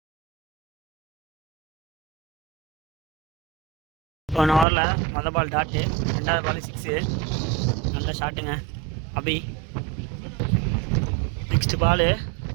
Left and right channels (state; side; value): drops out; left; at 4.7 s